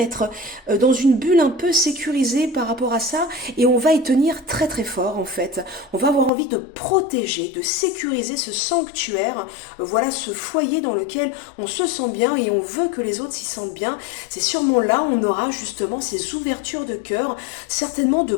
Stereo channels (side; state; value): right; drops out; at 6.3 s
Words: être dans une bulle un peu sécurisée par rapport à ça et on va y tenir très très fort en fait. On va avoir envie de protéger, de sécuriser ce sanctuaire, voilà ce foyer dans lequel on se sent bien et on veut que les autres s'y sentent bien. C'est sûrement là on aura justement ces ouvertures de cœur, certainement de